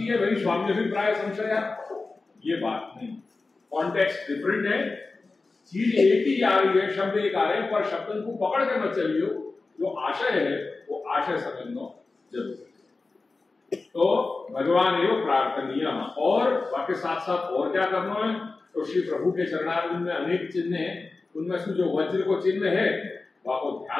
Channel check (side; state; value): right; quieter; 3.7 dB